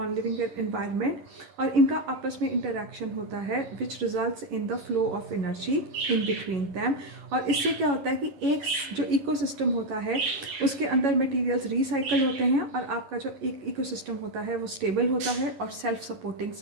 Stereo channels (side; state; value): left; late; 11 ms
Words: environment, और इनका आपस में इंटरेक्शन होता है which results in the flow of energy in between them। और इससे क्या होता है कि एक जो इकोसिस्टम होता है उसके अंदर मटेरियल्स रिसाइकल होते हैं और आपका जो एक इकोसिस्टम होता है वो स्टेबल होता है और सेल्फ सपोर्टिंग